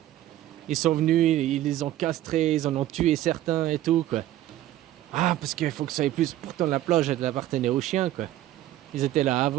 Ils sont venus, ils les ont castrés, ils en ont tué certains et tout quoi. Ah, parce qu'il faut que ça aille plus. Pourtant, la plage, elle appartenait aux chiens quoi. Ils étaient là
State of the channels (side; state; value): left; quieter; 13.9 dB